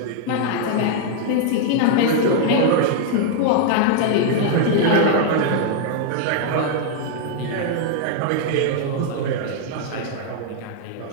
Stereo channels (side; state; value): both; different; correlation 0.00